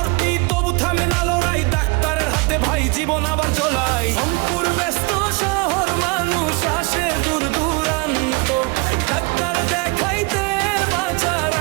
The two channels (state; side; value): quieter; left; 28.9 dB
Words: তবু থামে না লড়াই, ডাক্তারের হাতে ভাই জীবন আবার চলাই। রংপুর ব্যস্ত শহর, মানুষ আসে দূর দূরান্ত, ডাক্তার দেখাইতে বাঁচার